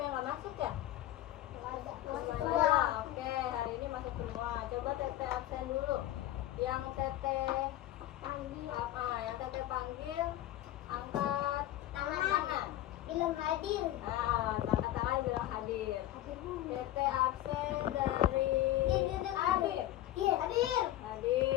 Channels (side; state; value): right; quieter; 14.2 dB